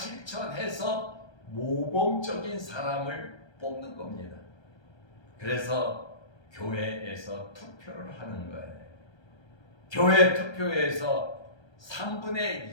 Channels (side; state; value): right; late; 1.3 ms